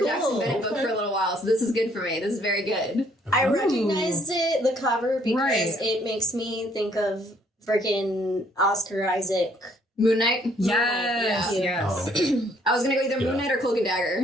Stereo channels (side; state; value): both; normal; correlation 0.65